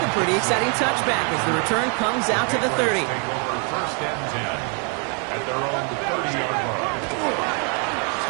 a pretty exciting touchback as the return comes out to the 30. Take over 1st and 10 at their own 30-yard line.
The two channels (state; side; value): quieter; left; 38.0 dB